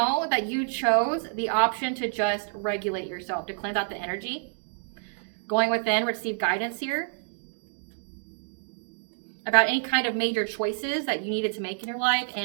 that you chose the option to just regulate yourself, to cleanse out the energy. Going within, receive guidance here about any kind of major choices that you needed to make in your life.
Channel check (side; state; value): left; silent; digital silence